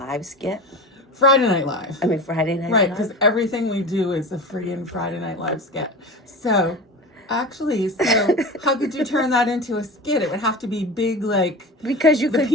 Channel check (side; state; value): both; normal; correlation 0.30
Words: skit? Friday Night Live. I mean, Friday Night Right, Live? because everything we do is a freaking Friday Night Live skit. So, actually, how could you turn that into a skit? It would have to be big, like Because you the could